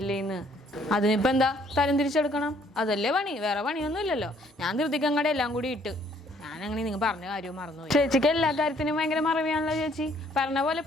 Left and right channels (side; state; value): both; normal; correlation 0.63